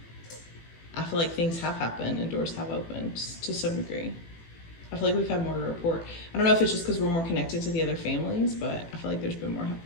I feel like things have happened and doors have opened to some degree. I feel like we've had more to report. I don't know if it's just because we're more connected to the other families, but I feel like there's been more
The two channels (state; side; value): late; right; 18 ms